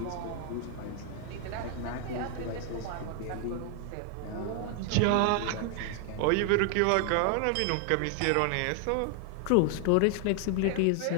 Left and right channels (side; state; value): both; different; correlation 0.00